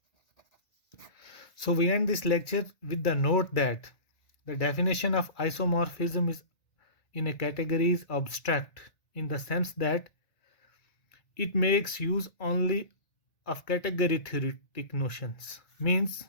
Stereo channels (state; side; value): late; right; 1.9 ms